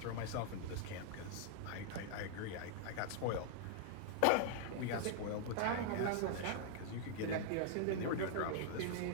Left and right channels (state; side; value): different; both; correlation -0.01